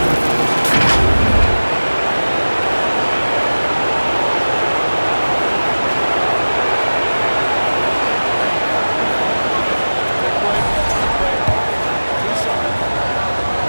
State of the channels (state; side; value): inverted; both; correlation -1.00